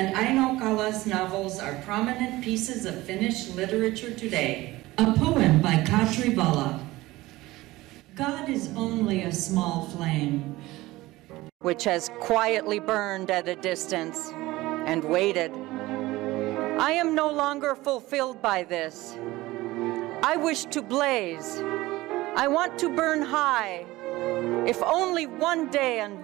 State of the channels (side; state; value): left; quieter; 18.7 dB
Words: Aino Kala's novels are prominent pieces of Finnish literature today. A poem by Katri Vala. God is only a small flame, which has quietly burned at a distance and waited. I am no longer fulfilled by this. I wish to blaze. I want to burn high, if only one day